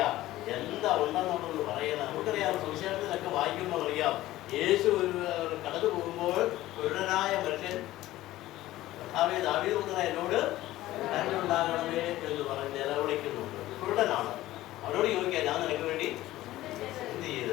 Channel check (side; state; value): right; quieter; 15.9 dB